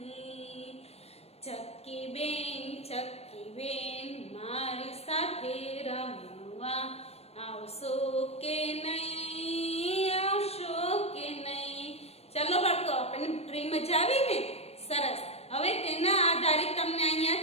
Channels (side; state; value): right; late; 0.30 ms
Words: ચક્કી બેન મારી સાથે રમવા આવશો કે નહીં, ચલો બાળકો, આપણને પ્રેમ મજા આવી ને? સરસ। હવે તેના આધારિત તમને